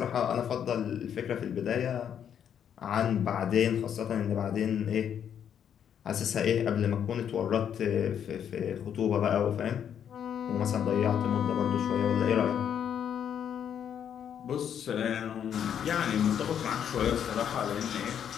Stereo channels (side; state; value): right; quieter; 8.8 dB